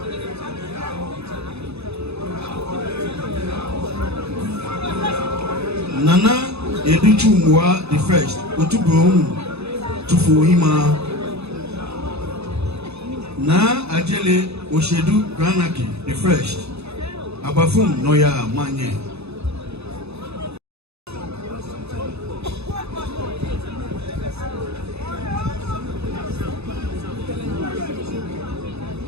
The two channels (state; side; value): late; left; 0.79 ms